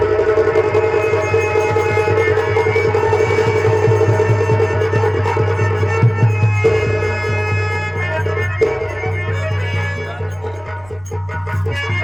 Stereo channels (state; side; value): noise; right; rumble, 26 dB below the sound